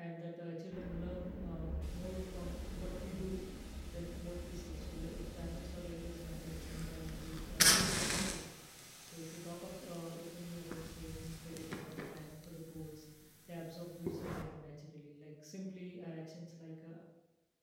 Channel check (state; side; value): identical; both; correlation 1.00